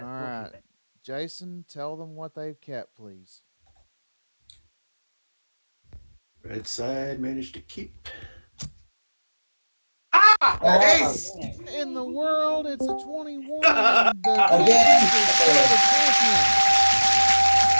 we'll right. keep it. Jason, tell them what they've kept, please. Red side managed to keep. Ah! Ah! Ace! In the world, it's a 21, and the Again! champions are still the champions.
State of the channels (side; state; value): both; inverted; correlation -1.00